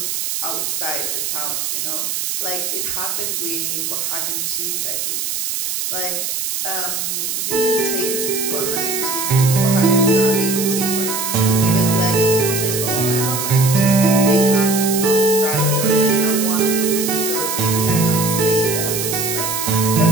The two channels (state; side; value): noise; right; hiss, 2 dB below the sound